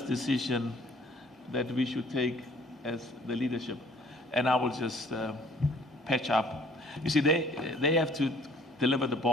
decision that we should take as the leadership. And I will just patch up. You see, they have to deliver the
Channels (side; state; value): both; normal; correlation 0.57